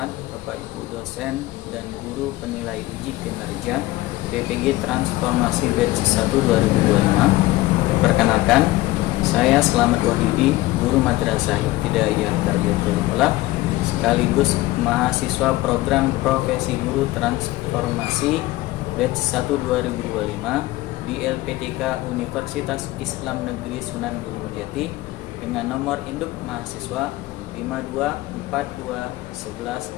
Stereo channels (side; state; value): right; quieter; 18.0 dB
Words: Bapak Ibu dosen dan guru penilai uji kinerja PPG Transformasi Batch 1 2025. Perkenalkan, saya Slamet Wahyudi, guru Madrasah Ibtidaiyah Tarbiyatul Aulah sekaligus mahasiswa program Profesi Guru Transformasi Batch 1 2025 di LPTK Universitas Islam Negeri Sunan Gunung Jati dengan nomor induk mahasiswa